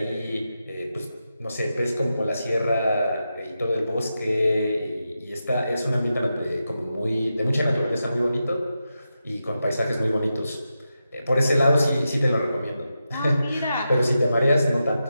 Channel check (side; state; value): both; inverted; correlation -0.88